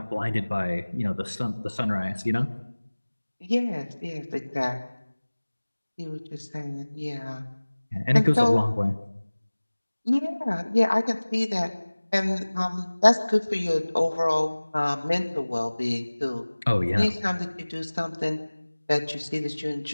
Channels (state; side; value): inverted; both; correlation -1.00